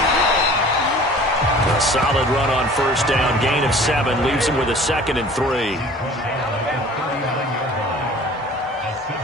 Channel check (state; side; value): normal; both; correlation 0.46